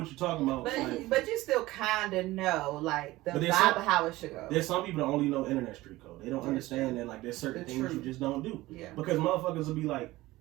you're talking about. But you still kind of know, like, the But there's vibe some- of how it should go. There's some people that only know internet street code. They don't Yeah, understand that like there's certain It's things true. you just don't do. Yeah. Because motherfuckers will be like,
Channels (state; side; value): quieter; left; 18.3 dB